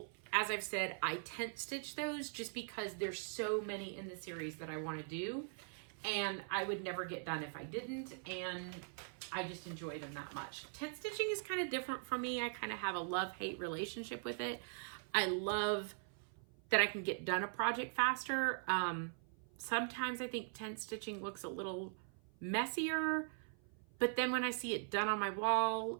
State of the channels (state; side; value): silent; left; 50 dB below the other